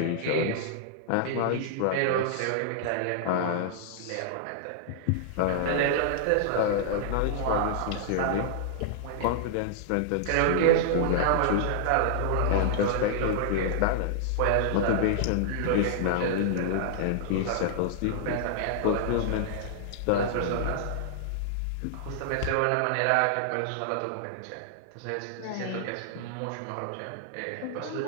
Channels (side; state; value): both; different; correlation -0.01